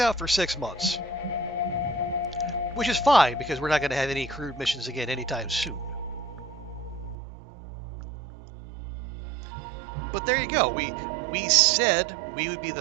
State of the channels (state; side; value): drops out; left; at 7.2 s